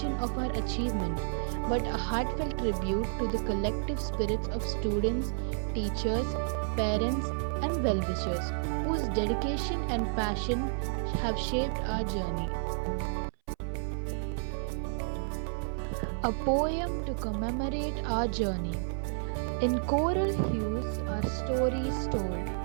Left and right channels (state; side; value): silent; left; 57 dB below the other